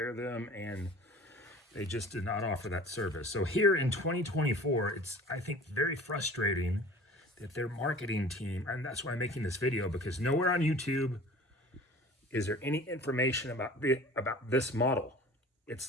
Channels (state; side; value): normal; both; correlation 0.43